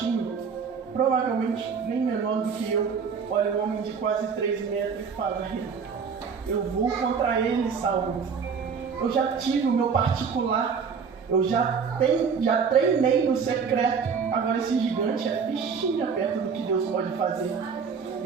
provavelmente nem menor do que eu. Olha um homem de quase 3 metros e fala: eu vou contra ele, Saul. Eu já tive o meu particular, eu já treinei no secreto. Agora esse gigante é fichinha perto do que Deus pode fazer.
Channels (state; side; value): quieter; left; 6.0 dB